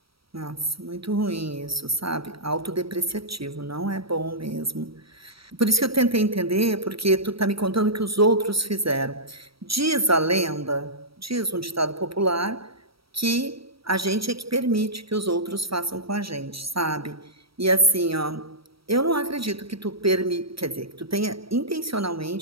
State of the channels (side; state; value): left; late; 0.75 ms